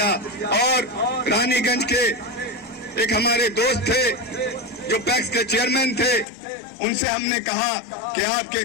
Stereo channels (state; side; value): drops out; right; at 6.2 s